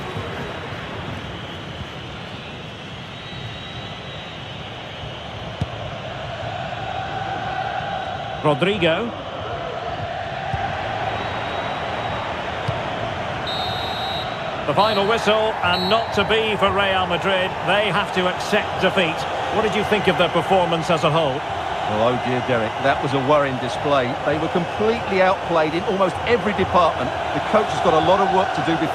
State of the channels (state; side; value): identical; both; correlation 1.00